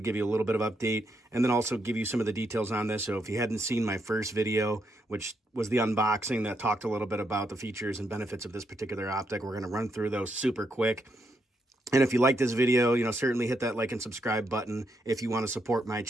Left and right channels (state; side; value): normal; both; correlation 0.79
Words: give you a little bit of update and then also give you some of the details on this. So if you hadn't seen my first video, which was the unboxing that talked a little bit about the features and benefits of this particular optic, we're going to run through those super quick. And if you like this video, certainly hit that like and subscribe button. If you want to support my